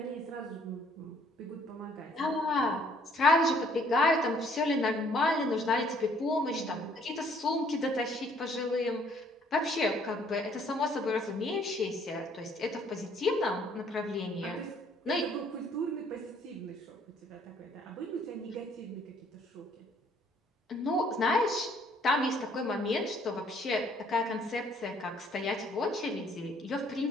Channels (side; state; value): both; normal; correlation 0.62